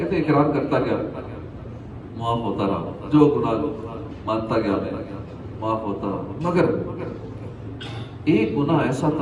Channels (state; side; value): identical; both; correlation 1.00